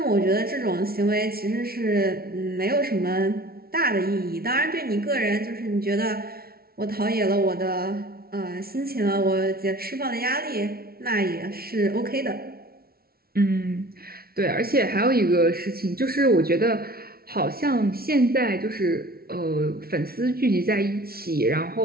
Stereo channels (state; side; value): late; left; 0.44 ms